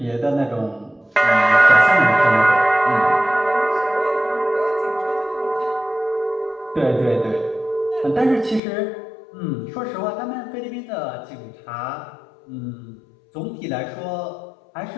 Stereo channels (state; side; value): drops out; right; at 8.6 s